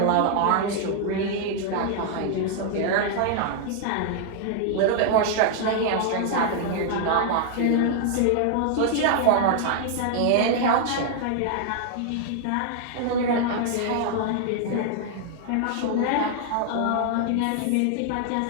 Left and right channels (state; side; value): different; both; correlation 0.00